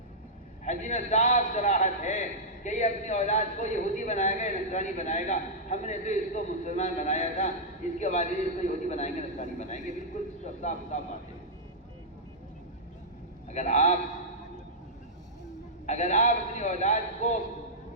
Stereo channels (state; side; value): normal; both; correlation -0.11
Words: حدیث میں صاف صراحت ہے کہ یہ اپنی اولاد کو یہودی بنائے گا، نصرانی بنائے گا۔ ہم نے تو اس کو مسلمان بنایا تھا، اس کے بعد اس کو یہودی بنائیں گے، نصرانی بنائیں گے، بالکل صاف صاف بات ہے۔ اگر آپ اپنی اولاد کو،